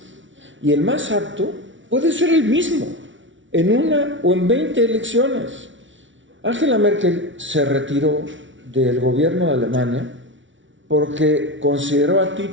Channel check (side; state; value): left; late; 0.56 ms